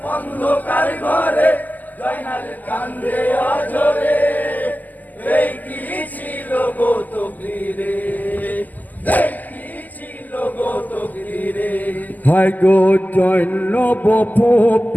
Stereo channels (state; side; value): late; right; 0.082 ms